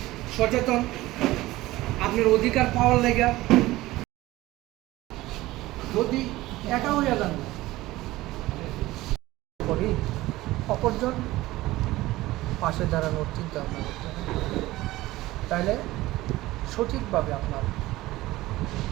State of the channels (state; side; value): quieter; left; 17.8 dB